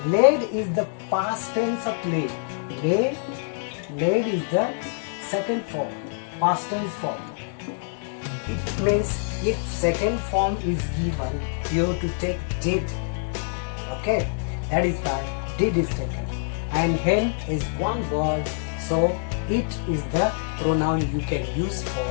Laid is the past tense of laid. Laid is the second form, past tense form. It means if second form is given, you have to take did. Okay, that is why did is taken. And hen is one word, so it is the pronoun you can use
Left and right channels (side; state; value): right; silent; digital silence